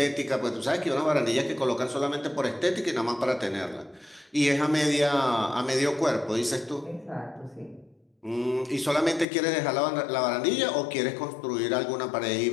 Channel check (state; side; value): drops out; right; at 9.2 s